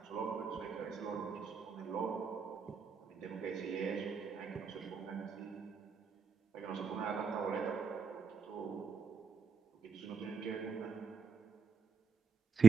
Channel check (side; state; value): left; quieter; 5.5 dB